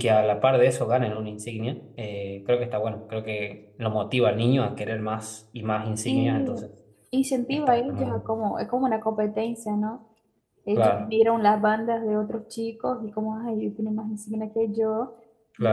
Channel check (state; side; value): identical; both; correlation 1.00